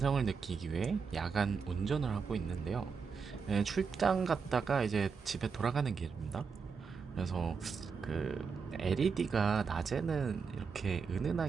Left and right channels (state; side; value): quieter; left; 5.6 dB